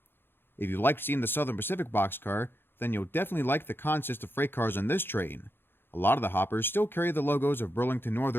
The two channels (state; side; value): late; right; 0.10 ms